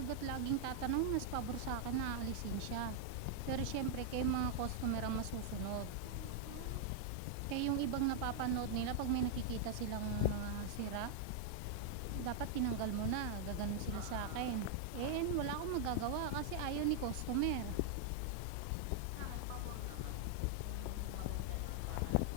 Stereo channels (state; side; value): different; both; correlation -0.01